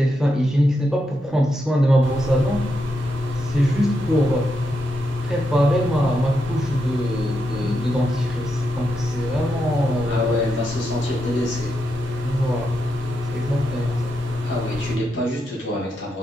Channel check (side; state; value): both; normal; correlation 0.84